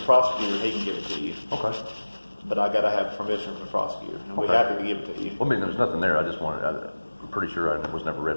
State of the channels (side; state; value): both; inverted; correlation -1.00